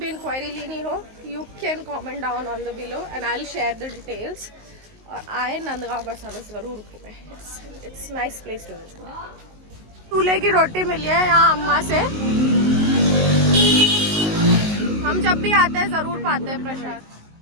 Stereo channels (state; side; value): late; left; 19 ms